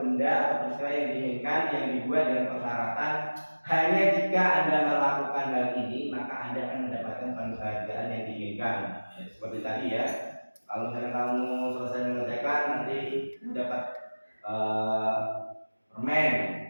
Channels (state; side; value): inverted; both; correlation -1.00